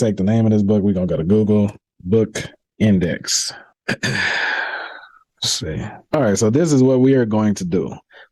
the name of this book. We're gonna go to Google Book Index. Let's see. All right, so this is what we are going to do.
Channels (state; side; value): identical; both; correlation 1.00